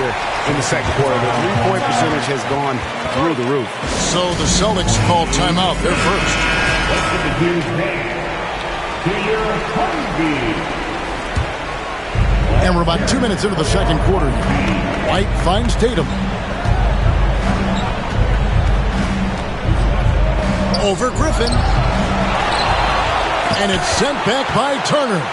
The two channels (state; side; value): identical; both; correlation 1.00